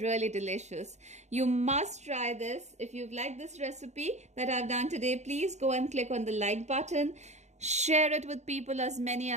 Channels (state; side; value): late; left; 0.33 ms